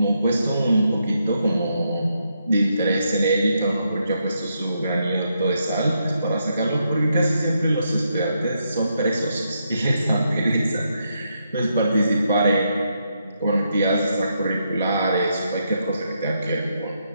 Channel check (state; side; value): inverted; both; correlation -0.80